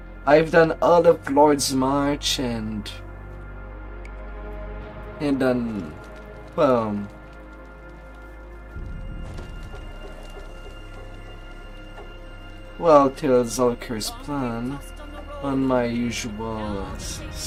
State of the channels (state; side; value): identical; both; correlation 1.00